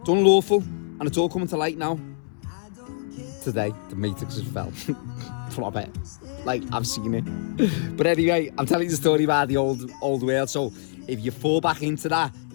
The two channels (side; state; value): right; silent; 62 dB below the other